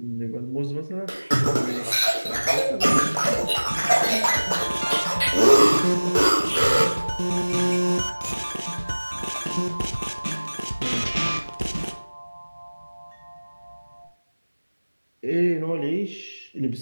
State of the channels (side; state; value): both; inverted; correlation -1.00